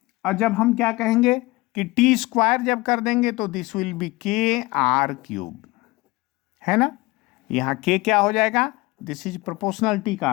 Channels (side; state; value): right; quieter; 21.7 dB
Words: और जब हम क्या कहेंगे कि टी स्क्वायर जब कर देंगे तो दिस विल बी के आर क्यूब, है ना। यहां के क्या हो जाएगा, दिस इज प्रोपोर्शनलिटी